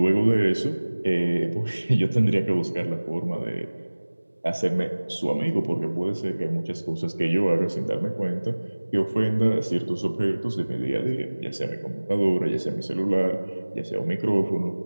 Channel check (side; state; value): both; inverted; correlation -1.00